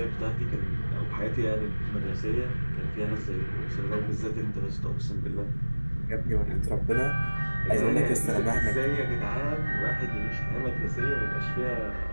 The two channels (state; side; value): inverted; both; correlation -1.00